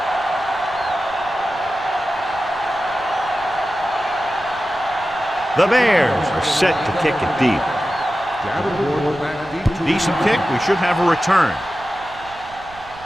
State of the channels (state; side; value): noise; right; rumble, 21 dB below the sound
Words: The Bears are set to kick it deep. Decent kick. We should have a return.